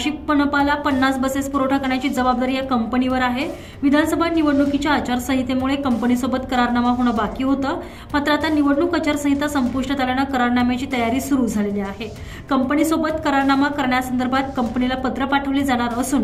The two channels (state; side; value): identical; both; correlation 1.00